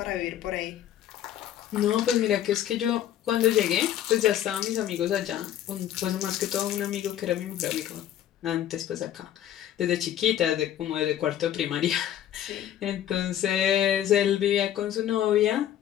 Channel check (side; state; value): right; quieter; 11.3 dB